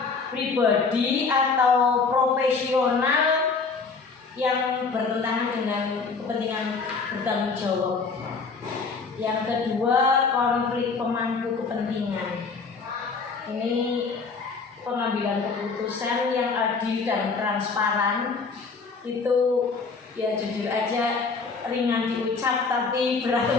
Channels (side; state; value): right; quieter; 4.7 dB